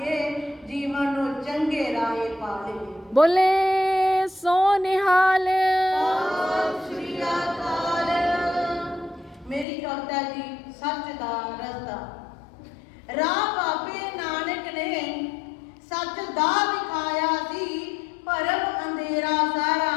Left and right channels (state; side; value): drops out; right; at 9.7 s